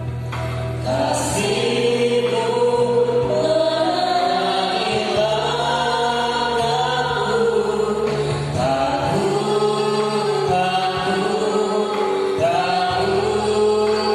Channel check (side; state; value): both; identical; correlation 1.00